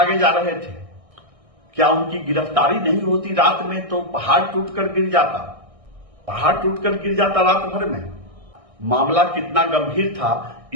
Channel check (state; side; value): late; left; 1.6 ms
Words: जा रहे थे? क्या उनकी गिरफ्तारी नहीं होती रात में तो पहाड़ टूटकर गिर जाता, रात भर में। मामला कितना गंभीर था